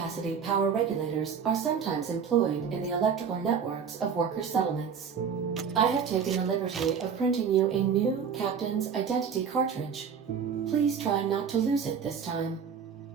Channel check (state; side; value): quieter; left; 6.9 dB